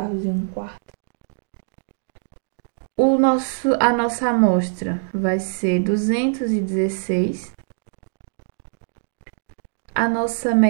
e 1/4. A nossa amostra vai ser 216. A nossa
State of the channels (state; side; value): silent; left; digital silence